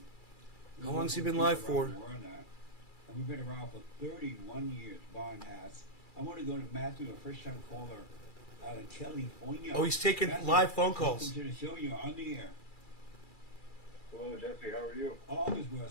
How long has he been live for? And we've been around for 31 years, Barn has. I want to go to Matthew, a first-time caller out of California. Oh, he's taking Matthew, live phone calls. Welcome to the show. You're on the air. Hello, Jesse. How are you? All is well,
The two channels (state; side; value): late; right; 2.3 ms